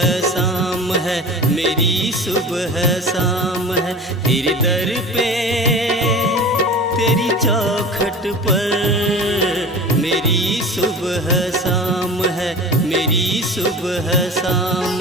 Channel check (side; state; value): both; normal; correlation 0.36